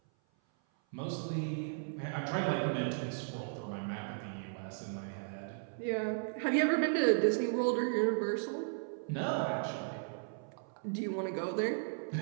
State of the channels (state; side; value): silent; left; 54 dB below the other